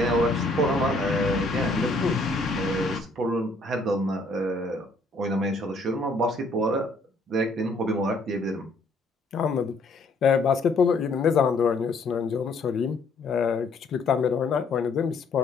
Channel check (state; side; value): quieter; right; 3.0 dB